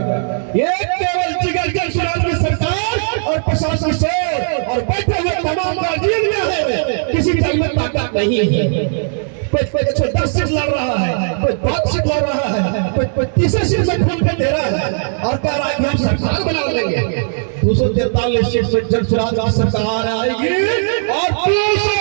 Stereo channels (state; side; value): silent; left; digital silence